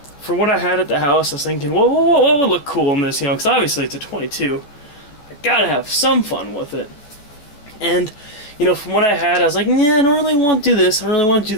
for what I had at the house, I was thinking, what would look cool in this, because obviously it's a 22. I gotta have some fun with it. And, from what I had, I was like, yeah, I don't really want to do this, I don't really want to do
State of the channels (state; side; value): late; right; 14 ms